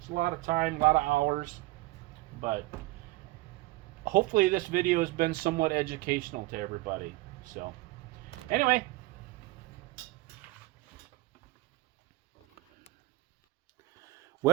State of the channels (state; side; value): quieter; left; 20.2 dB